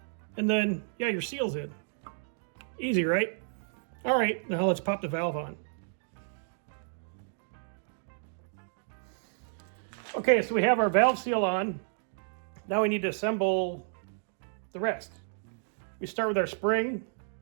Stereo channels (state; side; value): silent; left; digital silence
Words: And then, yeah, your seal's in. Easy, right? All right, now let's pop the valve on. Okay, so we have our valve seal on. Now we need to assemble the rest. We start with our spring